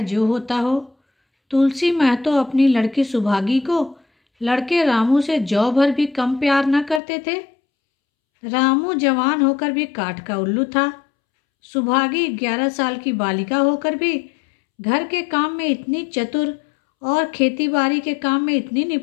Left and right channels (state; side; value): drops out; right; at 7.0 s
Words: जो होता हो, तुलसी महतो अपनी लड़की सुभागी को लड़के रामू से जौ भर भी कम प्यार न करते थे। रामू जवान होकर भी काठ का उल्लू था। सुभागी 11 साल की बालिका होकर भी घर के काम में इतनी चतुर और खेतीबाड़ी के काम में इतनी